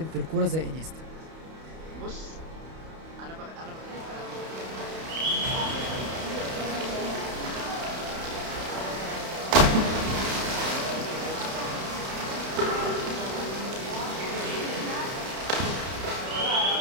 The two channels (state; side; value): late; left; 31 ms